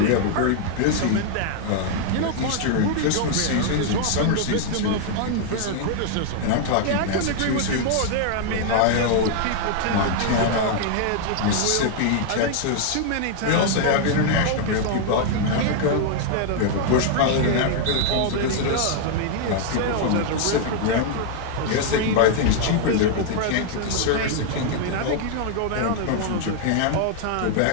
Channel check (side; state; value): both; different; correlation 0.00